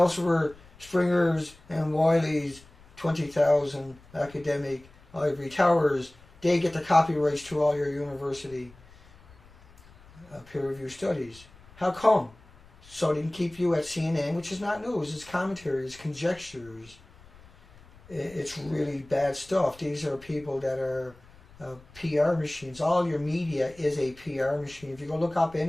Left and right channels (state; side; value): noise; left; rumble, 25 dB below the sound